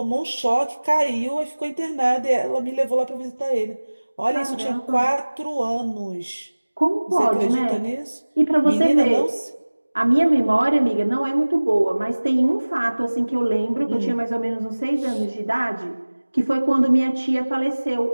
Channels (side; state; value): both; inverted; correlation -1.00